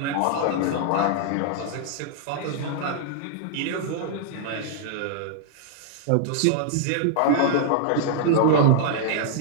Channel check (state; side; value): different; both; correlation -0.01